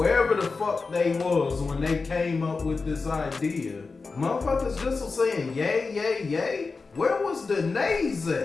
the fuck they was when they came up with this idea. Motherfuckers just was saying yay, yay, yay. Where was the nays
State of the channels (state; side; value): quieter; right; 4.2 dB